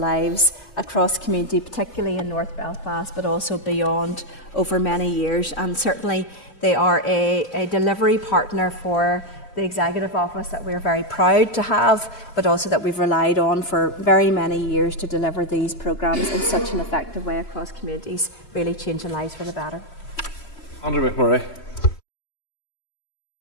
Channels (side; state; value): right; late; 3.1 ms